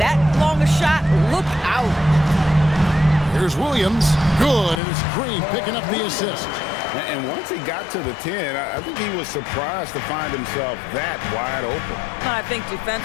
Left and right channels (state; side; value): drops out; right; at 4.8 s